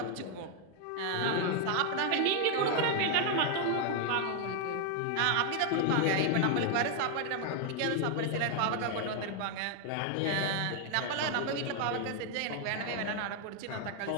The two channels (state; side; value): different; both; correlation 0.00